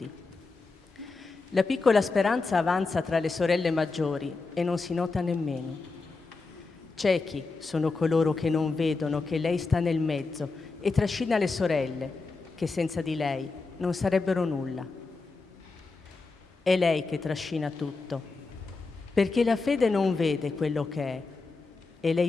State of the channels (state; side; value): quieter; right; 3.9 dB